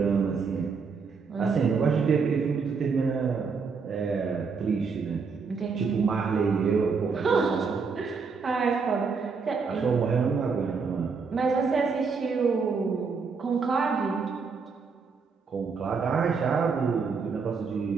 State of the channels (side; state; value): left; quieter; 5.2 dB